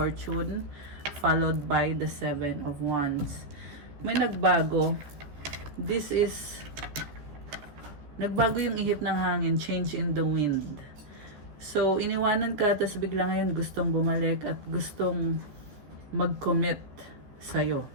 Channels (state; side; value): late; left; 14 ms